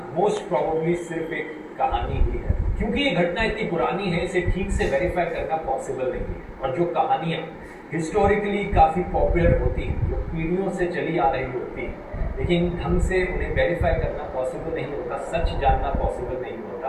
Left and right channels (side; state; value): both; identical; correlation 1.00